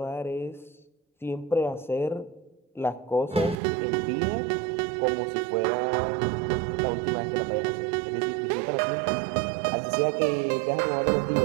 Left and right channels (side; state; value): left; drops out; at 3.6 s